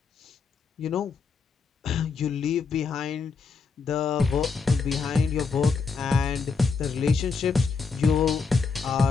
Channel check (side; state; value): right; quieter; 5.0 dB